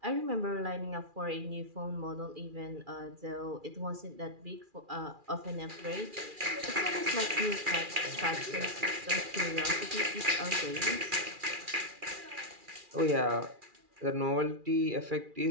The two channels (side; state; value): left; late; 2.4 ms